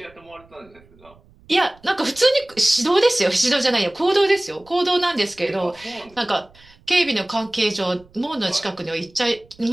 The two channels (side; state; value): right; noise; rumble, 28 dB below the sound